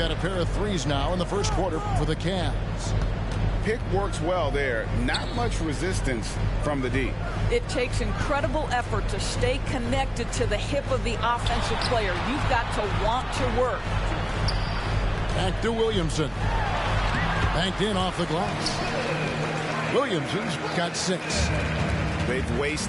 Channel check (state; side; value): identical; both; correlation 1.00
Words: a pair of threes now in the first quarter for the Cavs. Pick works well there. Not much resistance from the D. It takes incredible effort to stay connected to the hip of the offensive player. You've got to want to work. Back to Williamson. Banked in off the glass. Williamson's got 6. They've